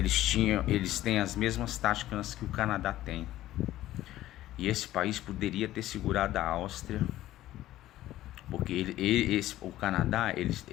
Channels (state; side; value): quieter; right; 14.5 dB